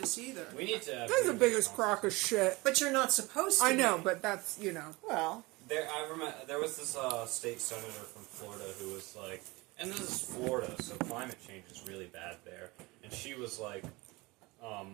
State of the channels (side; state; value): left; quieter; 23.2 dB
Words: either. We need to. That's the biggest crock of shit. But you're not supposed to I know, be. but that's, Well, I remember there was this state senator from Florida who was like, and this is Florida, so climate change is really bad there. And she was like,